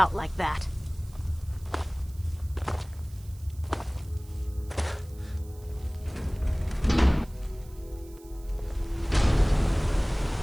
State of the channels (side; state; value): right; noise; hiss, 25 dB below the sound